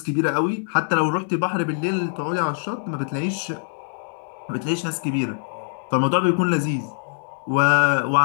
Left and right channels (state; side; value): silent; right; digital silence